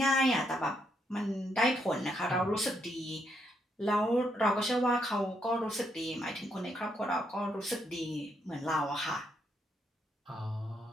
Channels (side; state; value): both; normal; correlation 0.76